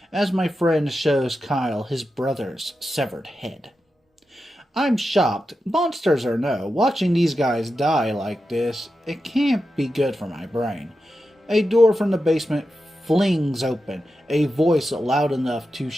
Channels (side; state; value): both; normal; correlation 0.90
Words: as my friend shows Kyle his brother's severed head. I'm shocked, monsters or no, watching these guys die like this, it can't be good for my brain. A door from the basement flings open, a voice loud enough to